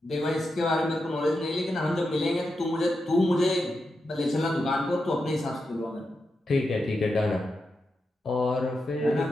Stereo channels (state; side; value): normal; both; correlation 0.87